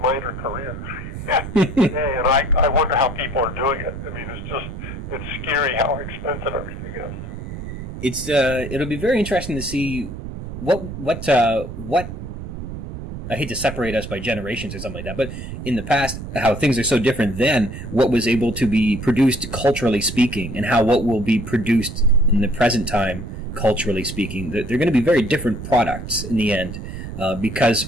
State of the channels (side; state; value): right; noise; rumble, 9 dB below the sound